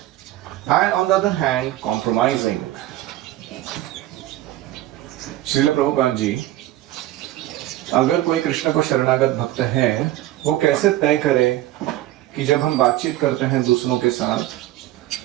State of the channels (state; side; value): quieter; left; 15.0 dB